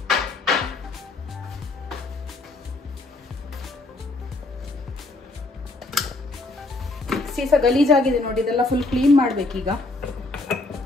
ಸಹ ಗಲೀಜಾಗಿದೆ ನೋಡಿ, ಇದೆಲ್ಲ ಫುಲ್ ಕ್ಲೀನ್ ಮಾಡ್ಬೇಕೀಗ.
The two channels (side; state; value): right; quieter; 3.2 dB